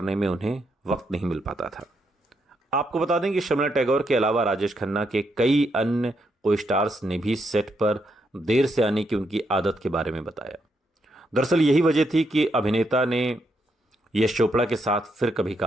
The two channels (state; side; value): normal; both; correlation 0.79